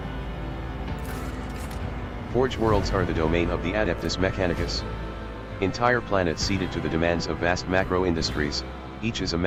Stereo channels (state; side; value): identical; both; correlation 1.00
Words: Forge worlds are the domain of the Adeptus Mechanicus. Entire planets ceded to the demands of vast macro-industries, each is a